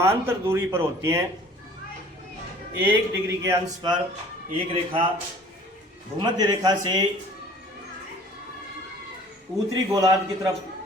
दूरी पर होती हैं। 1 डिग्री के अंश पर एक रेखा भूमध्य रेखा से उत्तरी गोलार्ध की तरफ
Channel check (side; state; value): both; normal; correlation 0.50